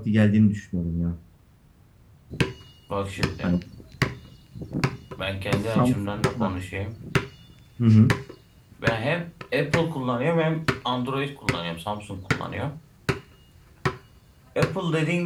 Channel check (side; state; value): both; identical; correlation 1.00